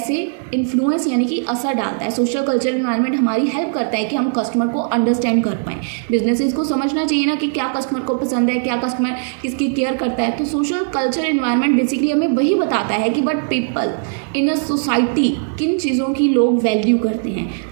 इन्फ्लुएंस यानी कि असर डालता है। सोशल कल्चर एनवायरनमेंट हमारी हेल्प करता है कि हम कस्टमर को अंडरस्टैंड कर पाएँ। बिजनेसेस को समझना चाहिए ना कि क्या कस्टमर को पसंद है, क्या कस्टमर किसकी केयर करता है। तो सोशल कल्चर एनवायरनमेंट बेसिकली हमें वही बताता है कि but people in a society किन चीज़ों की लोग वैल्यू करते हैं,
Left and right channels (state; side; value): silent; left; digital silence